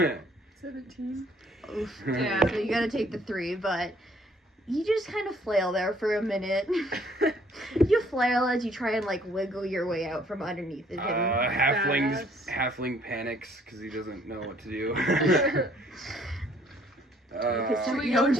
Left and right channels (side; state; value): both; normal; correlation 0.61